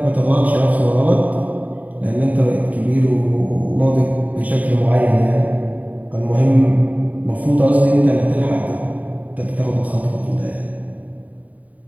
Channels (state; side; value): late; left; 0.072 ms